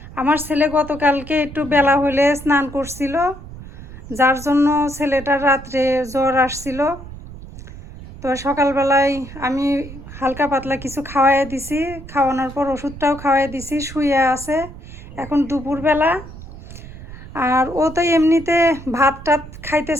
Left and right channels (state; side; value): noise; right; rumble, 14 dB below the sound